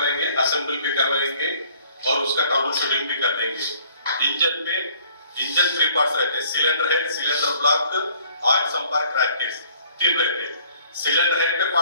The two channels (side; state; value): both; inverted; correlation -0.57